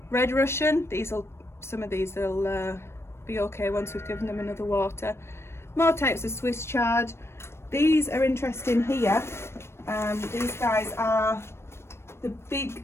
Red Russian. Some of these will be okay once we've given them another water. More types of Swiss chard. These are interesting here. These guys are the big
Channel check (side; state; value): right; late; 0.12 ms